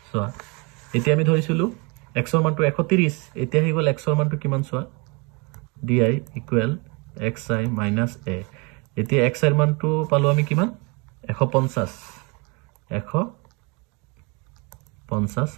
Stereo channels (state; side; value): quieter; left; 29.7 dB